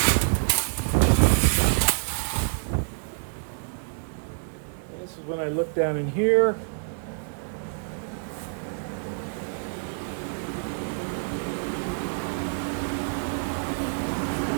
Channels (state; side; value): silent; left; digital silence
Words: When I look down in here,